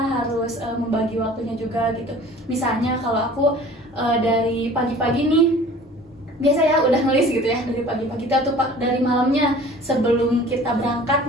membagi waktunya juga gitu. Misalnya kalau aku dari pagi-pagi nih biasa ya udah nulis gitu ya dari pagi-pagi atau dari malamnya sebelum kita berangkat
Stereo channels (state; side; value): normal; both; correlation 0.46